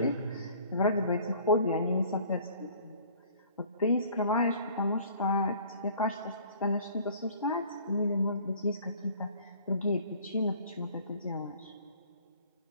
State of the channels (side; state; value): both; inverted; correlation -0.52